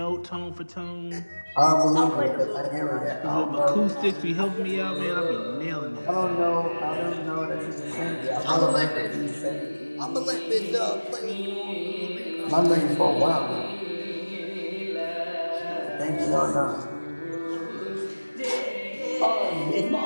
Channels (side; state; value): both; inverted; correlation -1.00